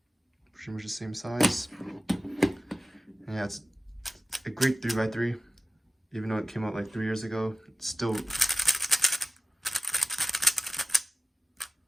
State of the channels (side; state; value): both; normal; correlation 0.96